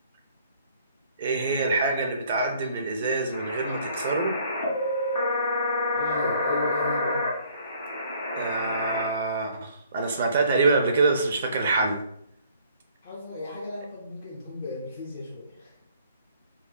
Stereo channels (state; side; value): inverted; both; correlation -0.59